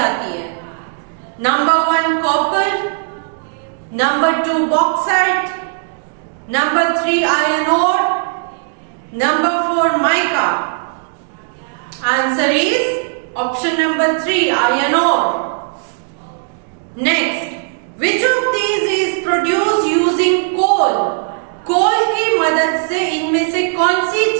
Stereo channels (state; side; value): silent; left; digital silence